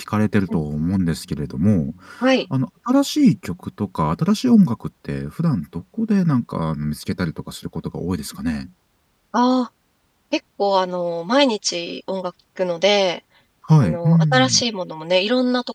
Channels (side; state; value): both; identical; correlation 1.00